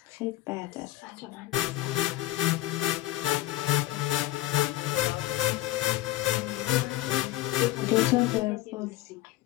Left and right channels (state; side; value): quieter; right; 16.2 dB